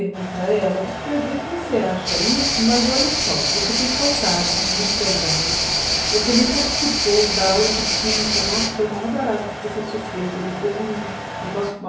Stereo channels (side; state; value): both; identical; correlation 1.00